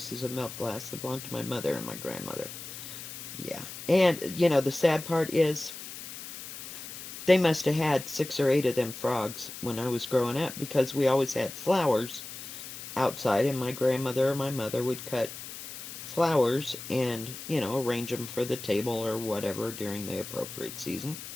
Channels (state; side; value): noise; left; hiss, 11 dB below the sound